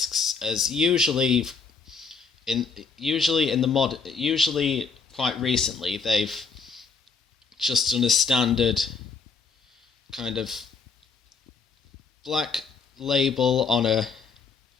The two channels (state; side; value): quieter; right; 5.0 dB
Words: as usually quite recently they've just done a standard kind of black label on a